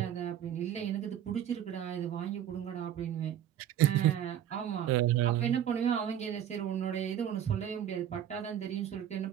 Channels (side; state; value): left; quieter; 10.5 dB